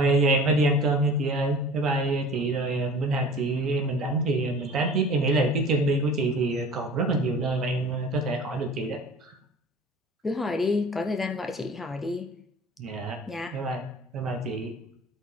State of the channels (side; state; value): both; normal; correlation 0.43